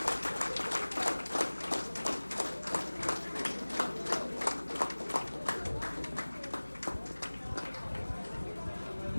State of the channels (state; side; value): inverted; both; correlation -1.00